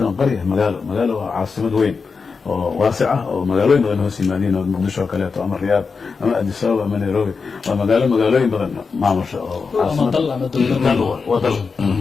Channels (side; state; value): right; quieter; 5.0 dB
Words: قرية مقالة عاصمة وين واسعة ومقالوين غنه سيمانين ومقدشة وكاليات وأما الرياض أما أديس أبابا أما نيروبي ومقالوين بغن معمر أما ضل وضل